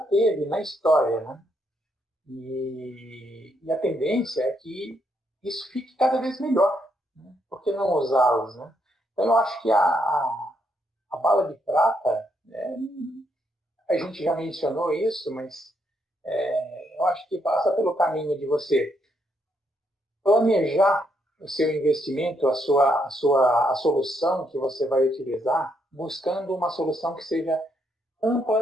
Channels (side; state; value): both; normal; correlation 0.76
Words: teve na história, né? E a tendência é que isso fique cada vez melhor, né? Por que não usá-los, né? Então, eu acho que a bala de prata, a gente já mencionou isso, mas eu acho que passa pelo caminho de você planejar o seu investimento, a solução que você vai utilizar, buscando uma solução que seja